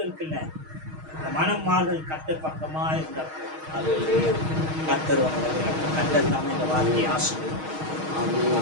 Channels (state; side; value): late; left; 6.4 ms